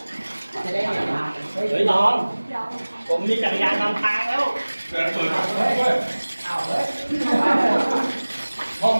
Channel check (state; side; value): inverted; both; correlation -1.00